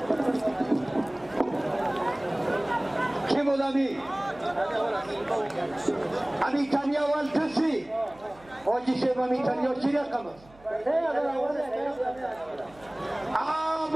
کی بود امی تنیا اول کسی آجی شیب امی تنیا چی رقم است؟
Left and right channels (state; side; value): noise; right; hum, 25 dB below the sound